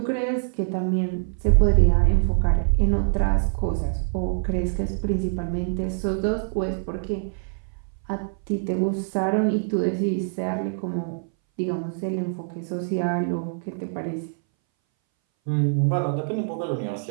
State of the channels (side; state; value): left; silent; 61 dB below the other